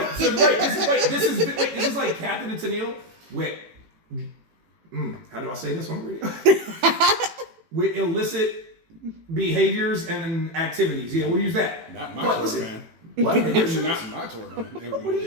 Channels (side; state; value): left; late; 18 ms